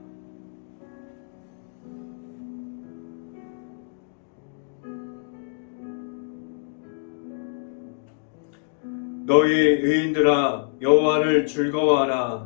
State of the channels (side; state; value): right; silent; digital silence